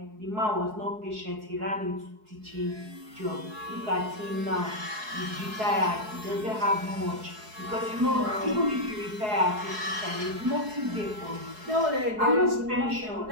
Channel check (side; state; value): left; late; 4.7 ms